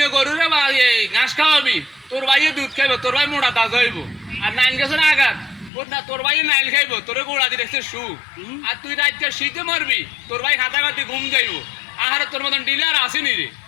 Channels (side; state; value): right; drops out; at 5.7 s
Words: গরু রে ঘাস খাওয়াবি, তোর ভাইয়ে দুধ খাইব, তোর ভাই মোটা তাজা হইব। আর নাইল গেছে আঘাত না, তোর ভাই নাইল খাইব, তোর গোড়া দিয়ে দেখছে শু। আর তুই রাইতে শীতে মরবি, তোর ভাই খাতা খাতি ঘুম যাইব। আহারে তোর মতন ডিলার আসেনি রে,